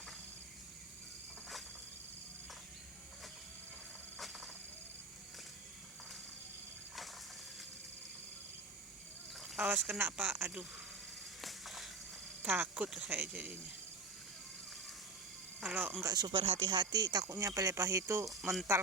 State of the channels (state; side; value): quieter; left; 3.7 dB